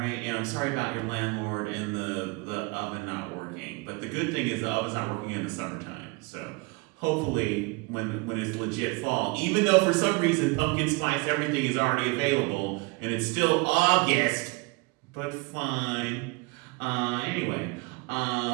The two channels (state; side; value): quieter; left; 27.7 dB